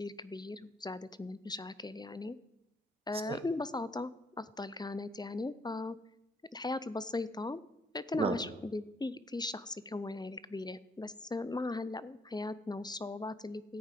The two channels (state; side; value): normal; both; correlation 0.69